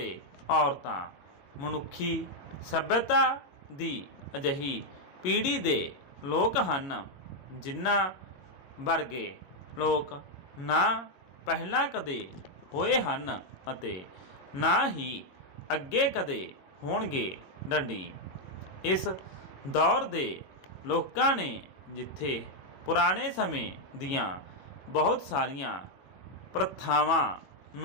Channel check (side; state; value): right; late; 22 ms